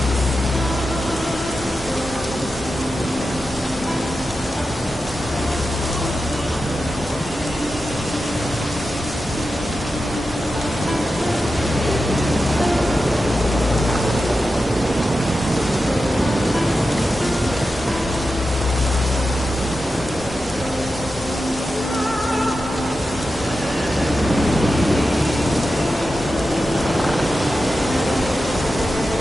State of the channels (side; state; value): both; normal; correlation 0.91